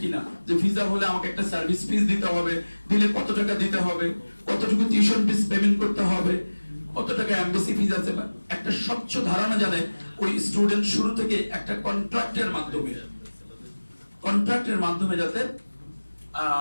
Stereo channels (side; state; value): both; inverted; correlation -1.00